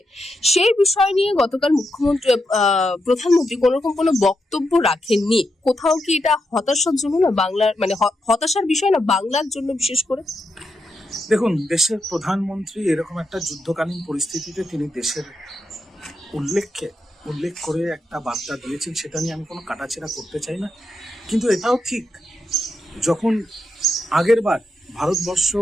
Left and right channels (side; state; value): both; normal; correlation 0.84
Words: সেই বিষয় নিয়ে গতকাল প্রধানমন্ত্রী কোন রকম কোনো বক্তব্য রাখেননি। কোথাও কি এটা হতাশার জন্য না, বাংলার মানে হতাশার বিষয় না বাংলার জন্য বিশেষ করে? দেখুন, দেশের প্রধানমন্ত্রী এরকম একটা যুদ্ধকালীন পরিস্থিতিতে তিনি দেশের উল্লেখ করে একটা বার্তা দিয়েছেন, সেটা নিয়ে আমি কোনো কাটাছেড়া করতে চাই না। কিন্তু এটাও ঠিক, যখন আগের বার ভারতবর্ষ